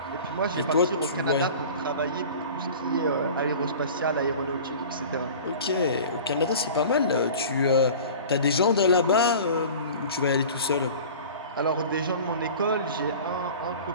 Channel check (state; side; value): inverted; both; correlation -0.40